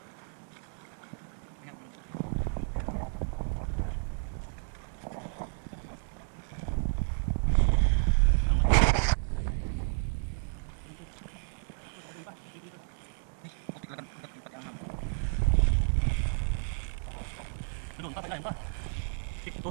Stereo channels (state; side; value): silent; left; digital silence